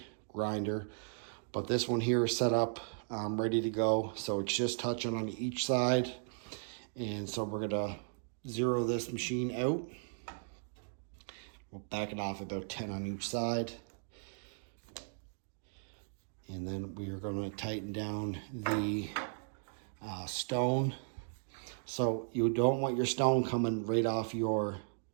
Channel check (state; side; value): silent; left; digital silence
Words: grinder. But this one here is set up, ready to go. So it's just touching on each side. And so we're gonna zero this machine out. We'll back it off about 10 on each side. And then we are gonna tighten down the stone. So you don't want your stone coming right off your